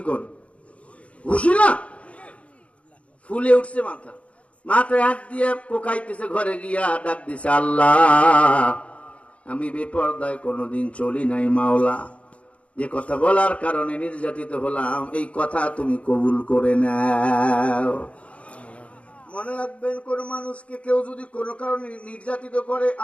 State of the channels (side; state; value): right; late; 0.063 ms